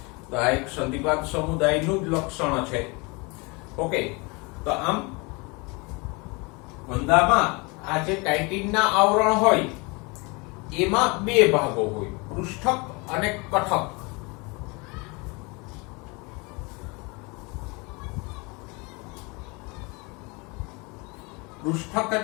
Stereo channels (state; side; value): quieter; right; 28.3 dB